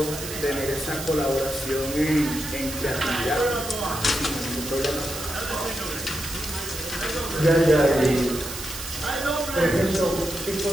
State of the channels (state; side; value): noise; right; hiss, 8 dB below the sound